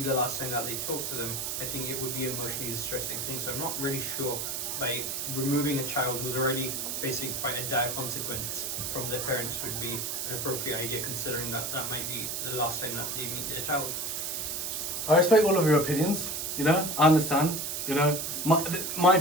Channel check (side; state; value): right; noise; hiss, 3 dB below the sound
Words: the last time that they talk to them. I think it would be an emotionally distressing thing. So I'm not really sure by removing a child who's already facing quite a dire consequence from their parents would be an appropriate idea, considering that that might be the last time that they meet their child. I respect all of your opinions. You know, I understand. You know, my